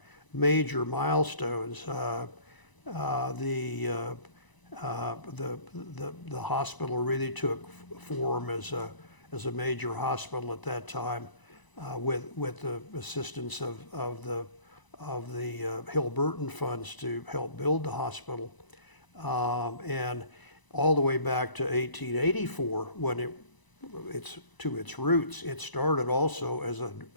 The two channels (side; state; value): right; late; 1.0 ms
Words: major milestones, the hospital really took form as a major hospital at that time, with the assistance of the Hill-Burton funds to help build the hospital, and all the way back to 1884 when it's to its roots. It started also as